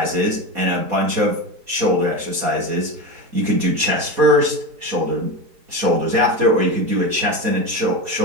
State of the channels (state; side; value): late; left; 4.2 ms